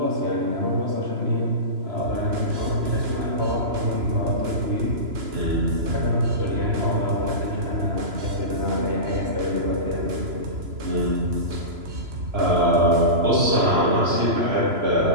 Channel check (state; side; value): late; left; 3.0 ms